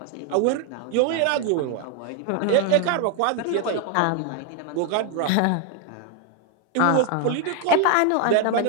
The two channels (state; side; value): different; both; correlation 0.00